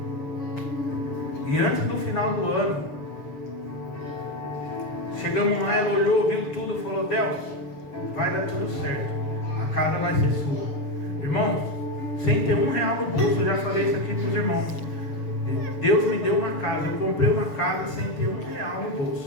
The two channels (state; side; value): late; right; 6.8 ms